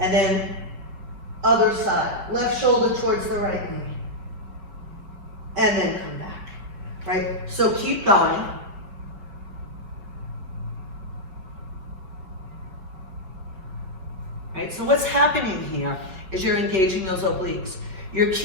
then other side. Left shoulder towards the right knee. And then come back, right? So keep going. Right, so what's happening here is you're engaging those obliques. You're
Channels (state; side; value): late; left; 5.3 ms